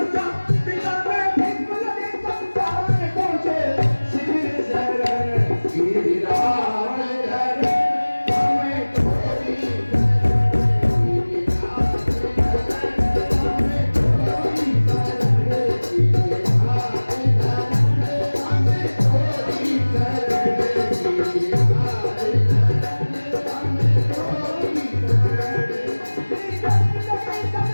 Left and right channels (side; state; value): both; inverted; correlation -1.00